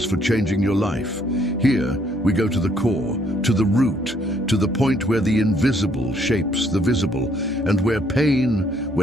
for changing your life. Here, we go to the core, to the root, to the point where the invisible shapes the visible, and where pain,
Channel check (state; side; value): normal; both; correlation 0.67